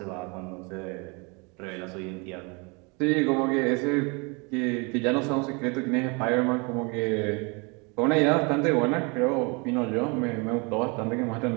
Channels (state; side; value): quieter; left; 30.5 dB